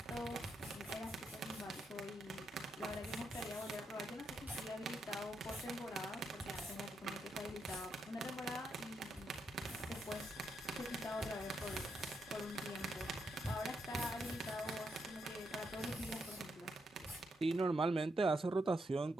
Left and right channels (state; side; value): normal; both; correlation 0.81